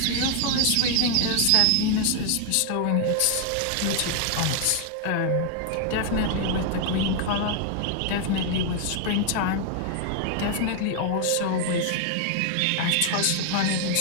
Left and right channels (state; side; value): different; both; correlation 0.00